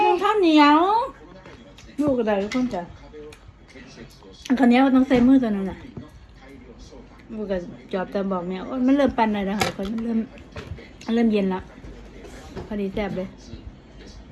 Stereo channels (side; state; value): both; identical; correlation 1.00